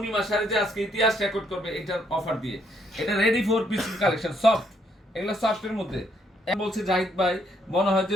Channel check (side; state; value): both; normal; correlation 0.72